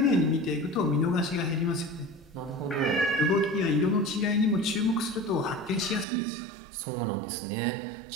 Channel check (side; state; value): left; drops out; at 6.1 s